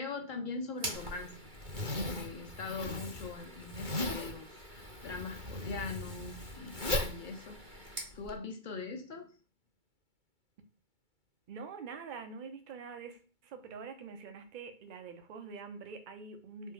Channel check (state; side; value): late; left; 2.3 ms